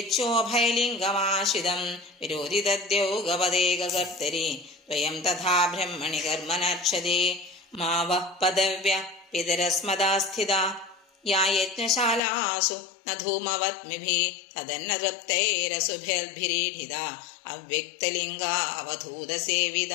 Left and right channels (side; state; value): right; drops out; at 12.2 s